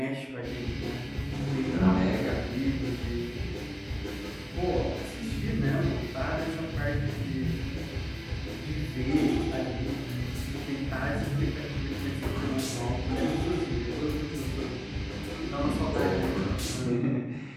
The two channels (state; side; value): identical; both; correlation 1.00